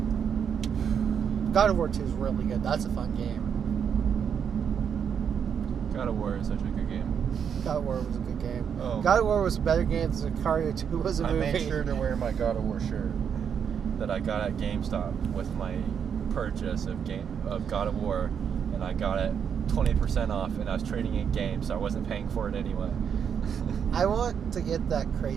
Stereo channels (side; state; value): left; quieter; 7.6 dB